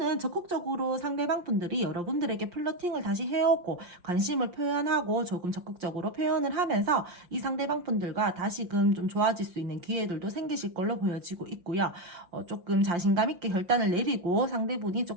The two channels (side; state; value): left; late; 5.7 ms